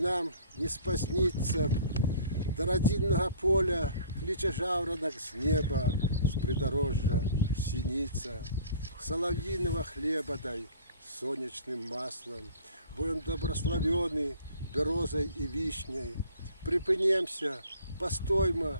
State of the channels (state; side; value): inverted; both; correlation -0.50